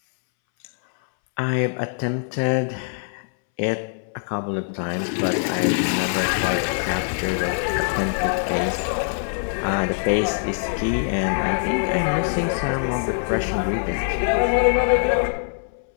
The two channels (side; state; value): right; silent; 63 dB below the other